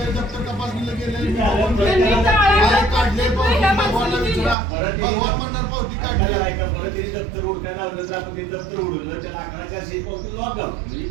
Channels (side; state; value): left; drops out; at 4.5 s